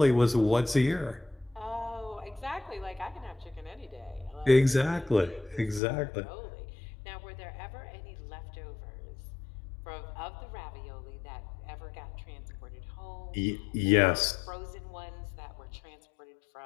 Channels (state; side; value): drops out; right; at 5.8 s